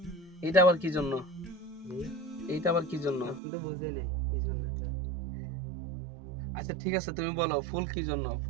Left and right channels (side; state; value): left; drops out; at 3.4 s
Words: এটা আবার কি জন্য? এইটা আবার কি জন্য? আপনি তো বুঝেন কি জন্য এটা। আচ্ছা ঠিক আছে, তুমি বলো ফুল কি জন্য?